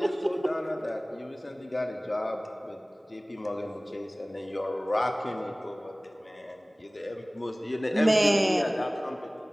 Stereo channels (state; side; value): normal; both; correlation 0.98